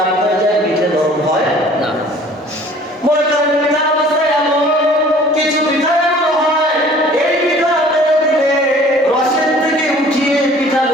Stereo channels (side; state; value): both; normal; correlation 0.51